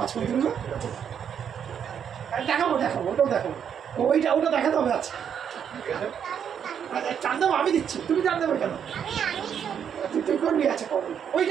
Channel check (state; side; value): quieter; left; 8.2 dB